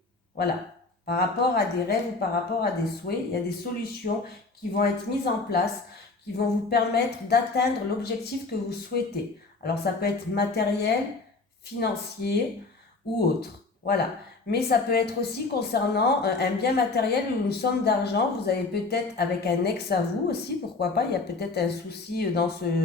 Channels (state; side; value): quieter; right; 3.7 dB